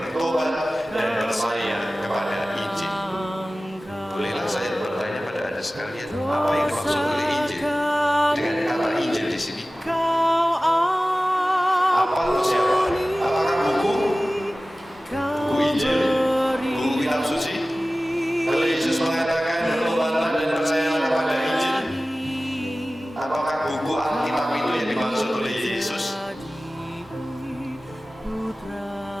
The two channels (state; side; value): normal; both; correlation 0.97